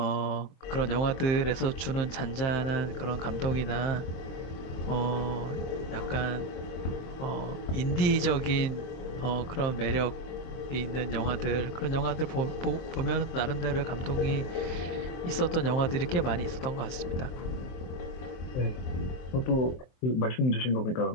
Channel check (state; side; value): late; right; 23 ms